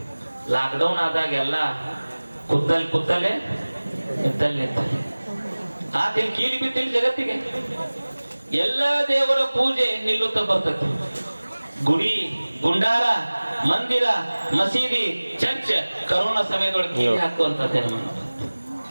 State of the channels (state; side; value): inverted; both; correlation -1.00